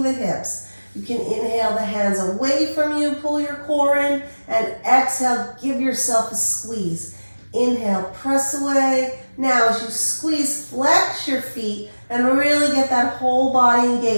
the hips. You can inhale the hands away from you, pull your core in, and exhale, give yourself a squeeze. Inhale, press away. Now as you squeeze, flex your feet and really get that whole body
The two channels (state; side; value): inverted; both; correlation -1.00